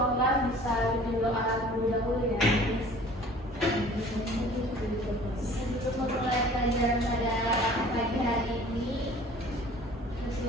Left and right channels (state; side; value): normal; both; correlation 0.48